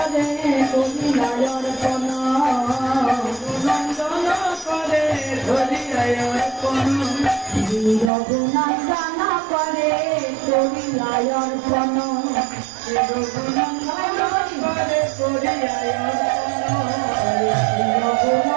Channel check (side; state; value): left; drops out; at 8.1 s